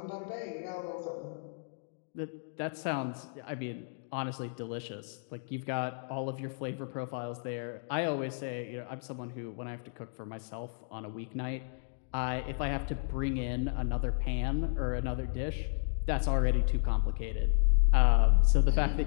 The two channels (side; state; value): right; silent; digital silence